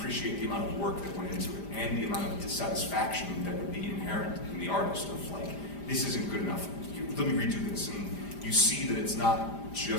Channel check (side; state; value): right; late; 5.0 ms